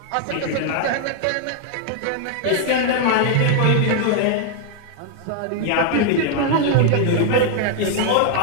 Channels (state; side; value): different; both; correlation 0.00